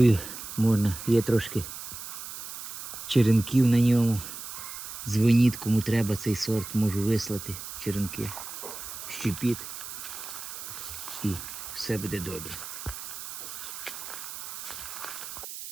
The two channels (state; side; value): noise; right; hiss, 9 dB below the sound